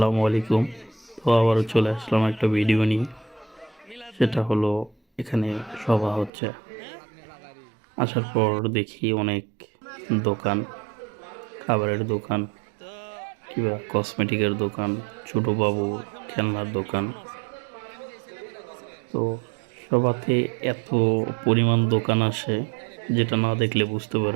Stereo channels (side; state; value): left; drops out; at 6.3 s